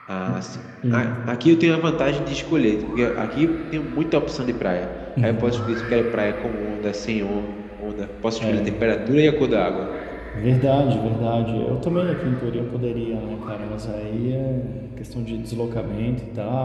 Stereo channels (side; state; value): both; identical; correlation 1.00